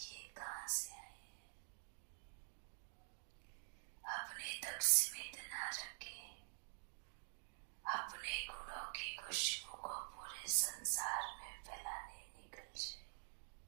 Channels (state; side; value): silent; left; digital silence